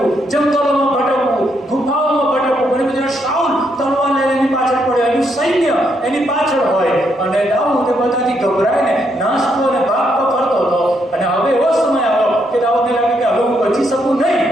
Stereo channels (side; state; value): both; normal; correlation 0.76